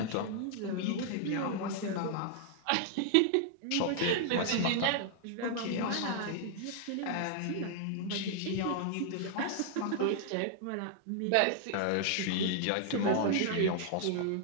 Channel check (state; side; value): different; both; correlation 0.00